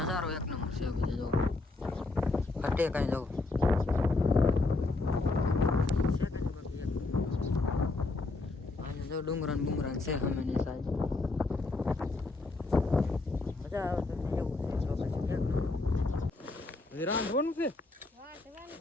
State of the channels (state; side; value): quieter; right; 3.4 dB